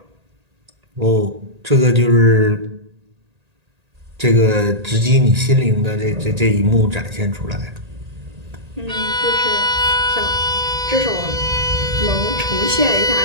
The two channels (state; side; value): late; left; 1.8 ms